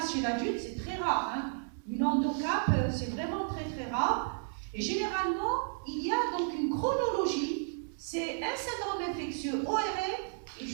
chez l'adulte, c'est très rare. Hein. Une endocap, c'est vraiment très très rare. Et généralement, il y a donc une chronologie. C'est un syndrome infectieux ORL et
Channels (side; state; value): left; silent; digital silence